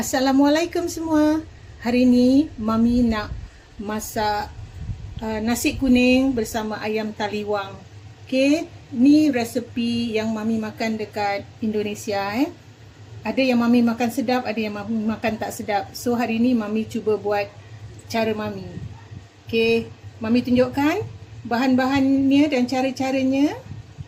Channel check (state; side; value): identical; both; correlation 1.00